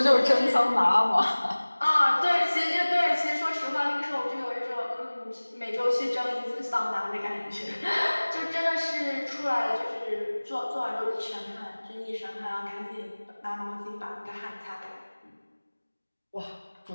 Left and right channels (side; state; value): both; inverted; correlation -1.00